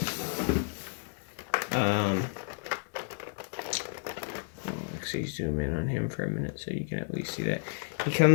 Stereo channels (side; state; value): right; silent; digital silence